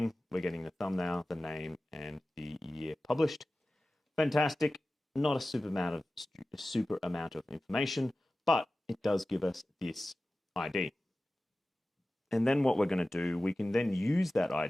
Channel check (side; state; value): both; normal; correlation 0.96